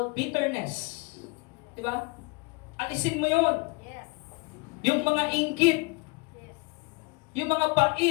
bitterness. Diba? Alisin mo yon. Yes. Yung mga inggit, Yes. yung mga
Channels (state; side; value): quieter; right; 28.1 dB